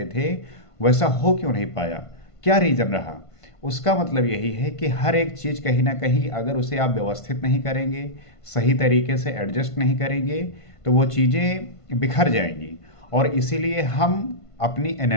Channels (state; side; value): late; right; 1.5 ms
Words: थे वैसा हो क्यों नहीं पाया? क्या रीज़न रहा? उसका मतलब यही है कि हर एक चीज़ कहीं ना कहीं अगर उसे आप व्यवस्थित नहीं करेंगे, सही तरीके से एडजस्ट नहीं करेंगे, तो वो चीज़ें बिखर जाएंगी। और इसीलिए हम अपनी